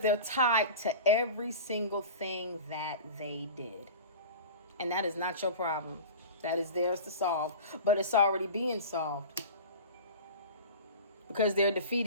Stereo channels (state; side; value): inverted; both; correlation -0.34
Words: tied to every single thing that they did. And that is not your problem. That is theirs to solve. But it's already being solved. Because they're